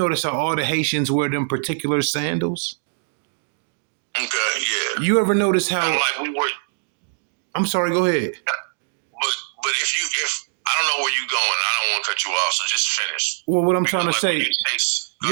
how all the Haitians wear them particular sandals? Okay, yeah. You ever notice how? Like we were. I'm sorry. Go ahead. But if I don't know where you're going, I don't want to cut you off. So just finish. Well, what I'm trying to say,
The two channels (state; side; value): silent; left; digital silence